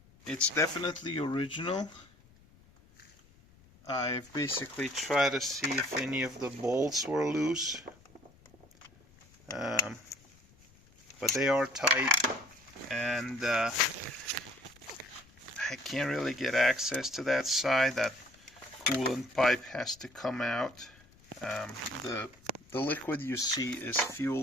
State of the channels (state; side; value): noise; left; rumble, 27 dB below the sound